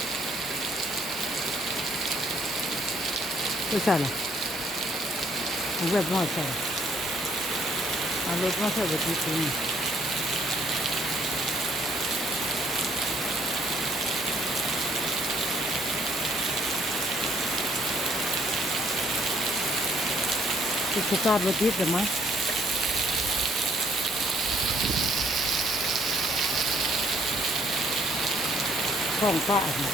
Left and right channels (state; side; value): normal; both; correlation 0.65